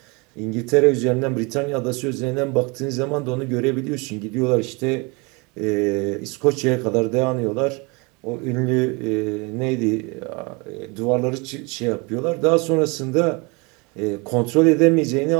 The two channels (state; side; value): quieter; left; 28.5 dB